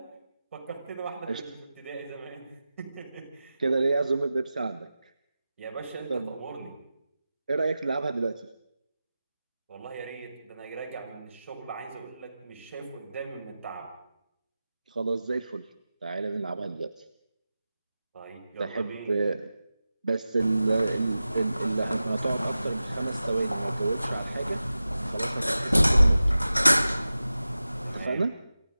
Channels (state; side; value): inverted; both; correlation -0.94